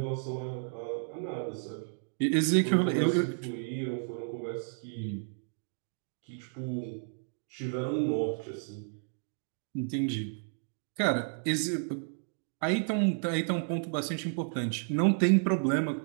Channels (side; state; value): left; silent; digital silence